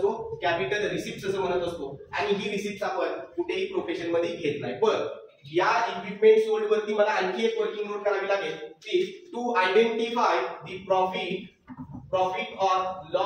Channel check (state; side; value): identical; both; correlation 1.00